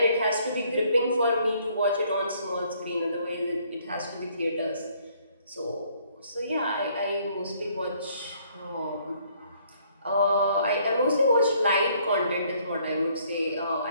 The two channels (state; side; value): inverted; both; correlation -0.64